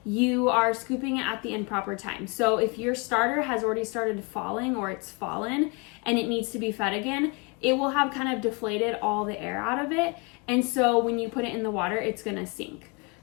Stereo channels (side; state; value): right; quieter; 31.5 dB